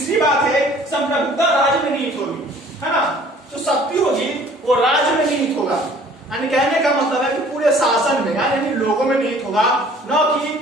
बात है संप्रभुता राज्य में निहित होगी, है ना। तो शक्ति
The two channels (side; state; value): both; normal; correlation 0.53